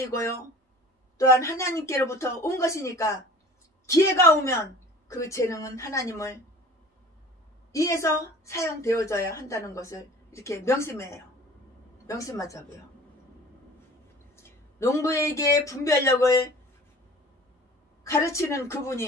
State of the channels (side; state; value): both; normal; correlation 0.45